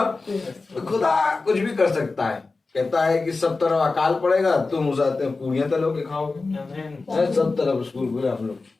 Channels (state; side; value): quieter; right; 3.8 dB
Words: खुदा कुछ भी कर सकता है। कहता है कि सब तरफ अकाल पड़ेगा, तुम उस आते पूरियां तलो के खाओगे। सब तरफ स्कूल खुले, हम लोग